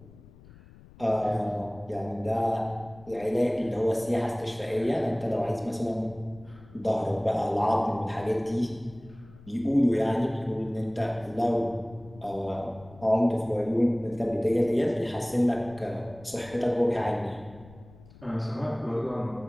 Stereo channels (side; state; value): left; noise; rumble, 22 dB below the sound